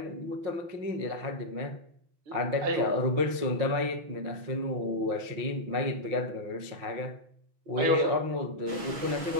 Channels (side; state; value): left; late; 5.7 ms